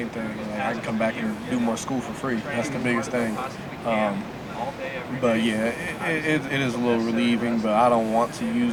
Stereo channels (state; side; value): identical; both; correlation 1.00